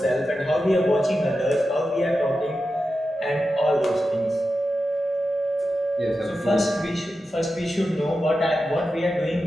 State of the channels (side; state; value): both; normal; correlation 0.91